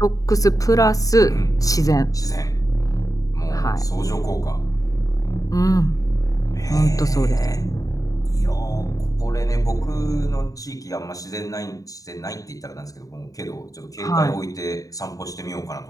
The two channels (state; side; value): late; right; 0.17 ms